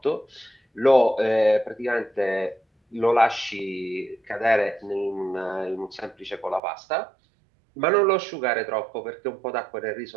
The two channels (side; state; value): left; drops out; at 6.6 s